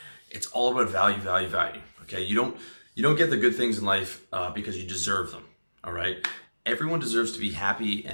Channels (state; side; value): inverted; both; correlation -1.00